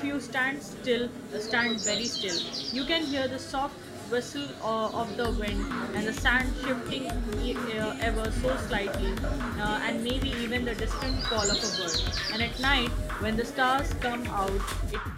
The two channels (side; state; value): both; identical; correlation 1.00